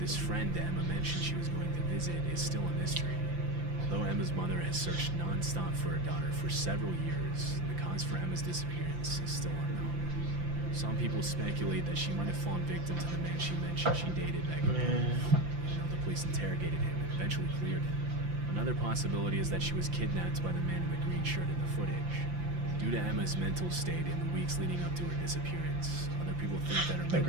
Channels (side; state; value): left; late; 5.8 ms